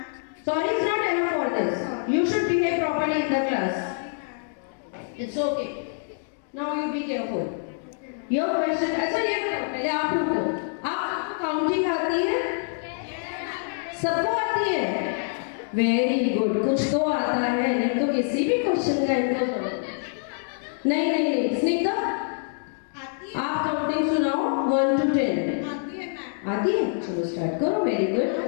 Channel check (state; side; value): silent; right; 61 dB below the other